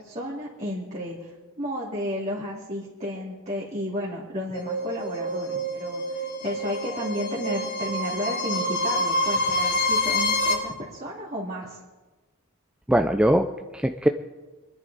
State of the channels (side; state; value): both; normal; correlation 0.19